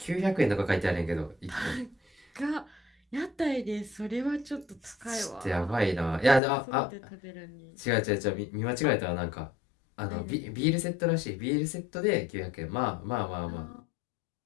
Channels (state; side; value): drops out; right; at 6.4 s